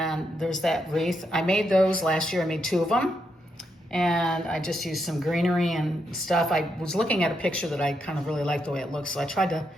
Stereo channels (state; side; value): normal; both; correlation 0.81